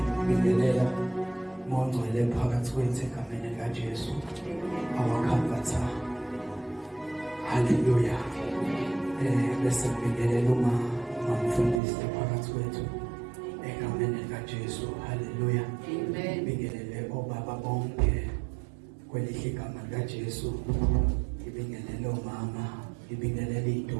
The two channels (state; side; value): drops out; left; at 11.8 s